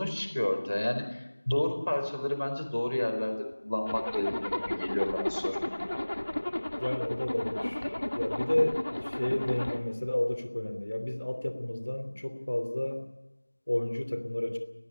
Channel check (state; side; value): inverted; both; correlation -1.00